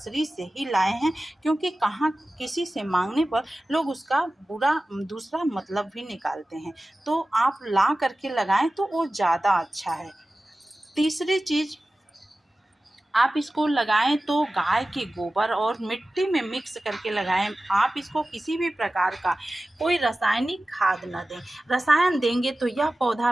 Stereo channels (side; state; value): both; normal; correlation 0.96